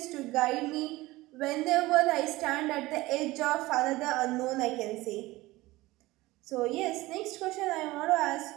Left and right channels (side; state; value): left; quieter; 19.3 dB